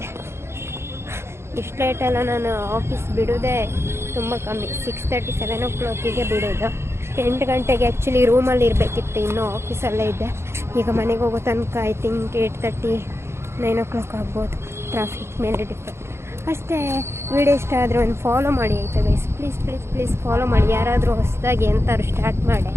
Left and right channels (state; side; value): late; left; 0.12 ms